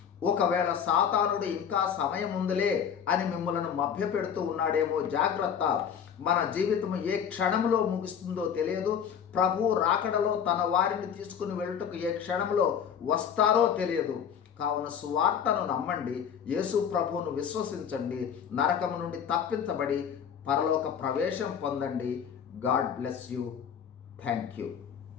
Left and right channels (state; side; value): quieter; right; 7.9 dB